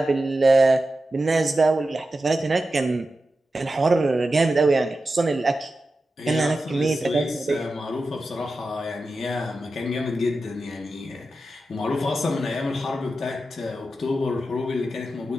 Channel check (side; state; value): both; normal; correlation 0.92